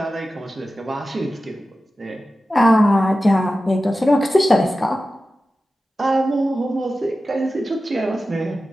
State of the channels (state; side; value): normal; both; correlation 0.94